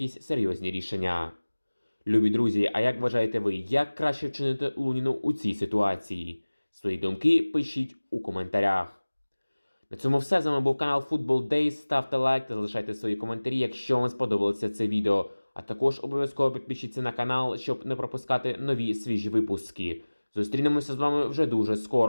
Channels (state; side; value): inverted; both; correlation -1.00